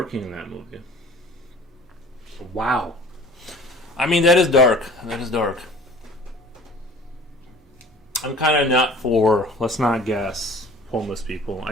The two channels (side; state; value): both; normal; correlation 0.47